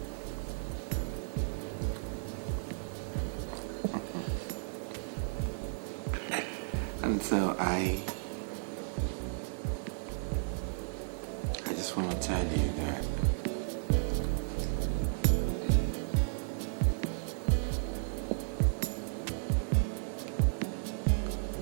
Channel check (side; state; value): left; silent; digital silence